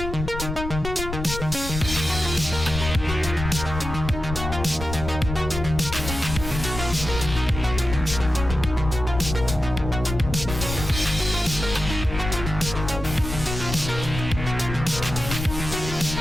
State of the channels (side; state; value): left; noise; rumble, 7 dB below the sound